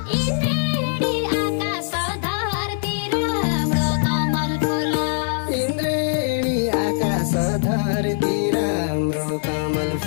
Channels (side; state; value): right; silent; digital silence